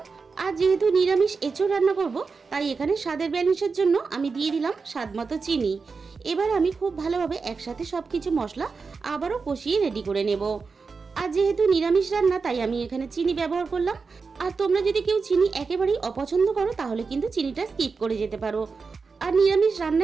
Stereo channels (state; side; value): quieter; left; 4.8 dB